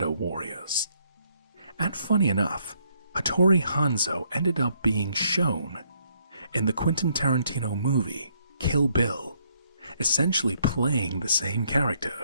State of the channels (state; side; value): inverted; both; correlation -0.70